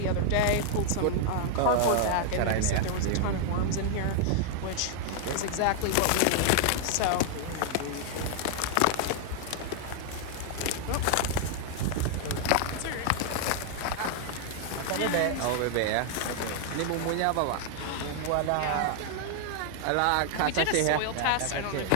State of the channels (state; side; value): different; both; correlation 0.00